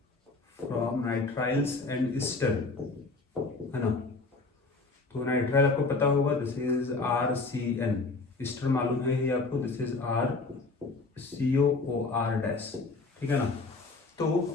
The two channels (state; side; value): quieter; right; 3.6 dB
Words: and Easter है ना। तो नाइट्राइल आपको पता होगा, दिस इज RCN, ईस्टर मालूम है ये आपको, दिस इज RCOOR-, ठीक है ना।